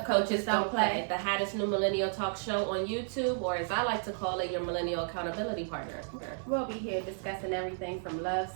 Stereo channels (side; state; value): left; silent; 55 dB below the other